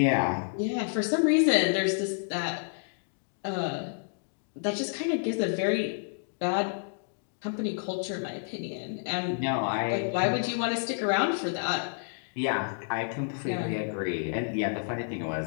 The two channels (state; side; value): silent; right; digital silence